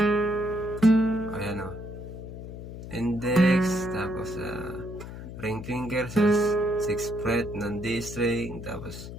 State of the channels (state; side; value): noise; left; hum, 11 dB below the sound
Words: Ayan o. Index, tapos ring finger sa 6th fret ng D string, tapos